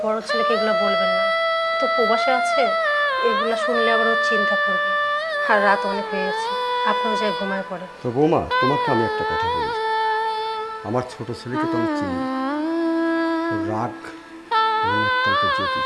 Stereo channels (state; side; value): identical; both; correlation 1.00